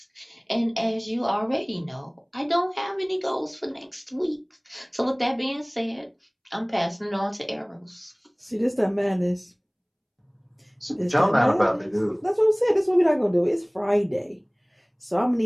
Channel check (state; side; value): identical; both; correlation 1.00